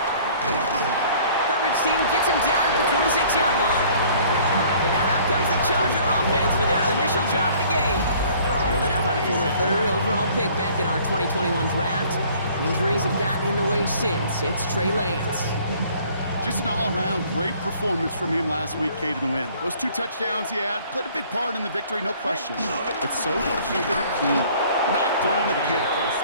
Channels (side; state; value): both; inverted; correlation -0.55